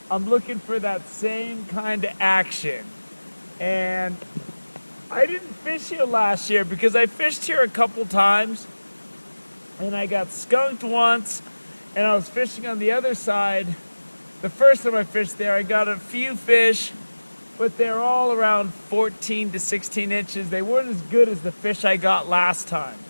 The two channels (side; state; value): both; inverted; correlation -1.00